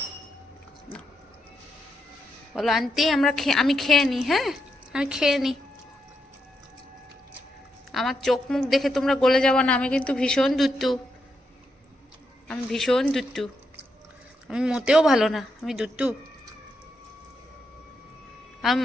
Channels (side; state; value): both; normal; correlation 0.82